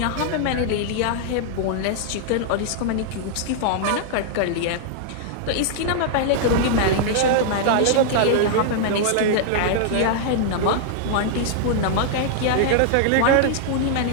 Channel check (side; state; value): both; different; correlation -0.01